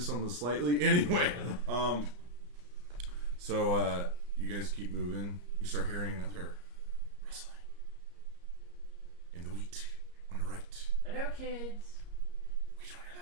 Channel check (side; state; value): left; late; 34 ms